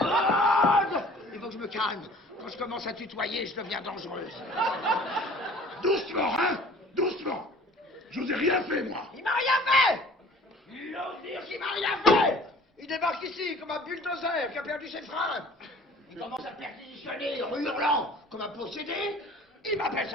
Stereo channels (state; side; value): normal; both; correlation 0.49